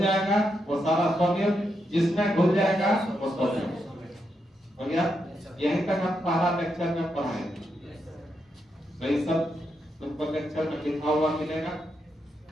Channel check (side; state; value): both; normal; correlation 0.82